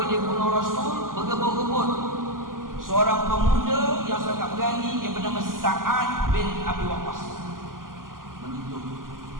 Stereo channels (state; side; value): late; left; 0.91 ms